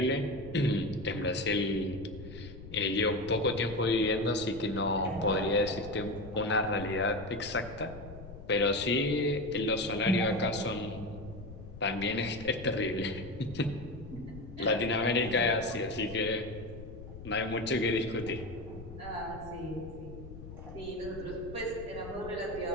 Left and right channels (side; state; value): left; noise; rumble, 13 dB below the sound